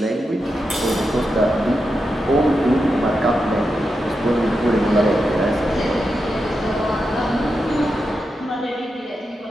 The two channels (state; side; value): normal; both; correlation 0.87